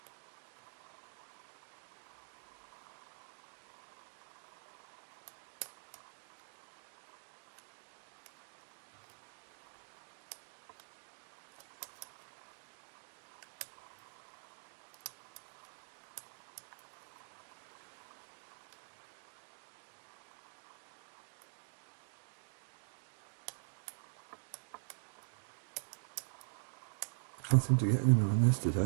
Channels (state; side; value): silent; left; digital silence